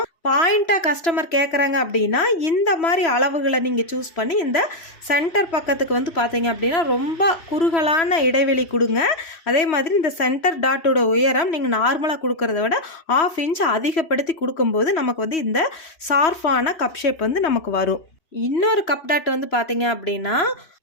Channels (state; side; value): late; right; 3.1 ms